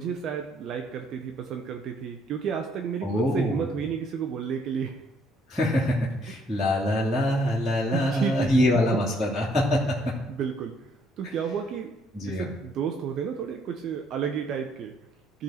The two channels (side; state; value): both; normal; correlation 0.67